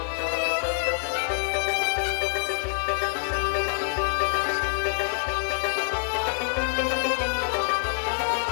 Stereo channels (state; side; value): silent; right; 61 dB below the other